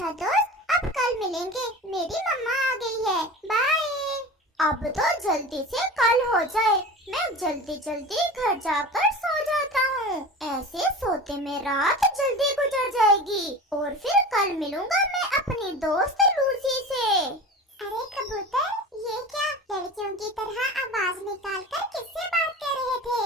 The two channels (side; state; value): both; normal; correlation 0.33